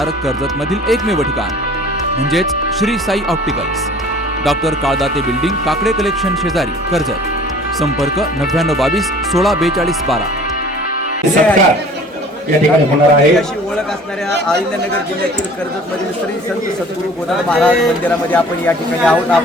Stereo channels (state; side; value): normal; both; correlation 0.48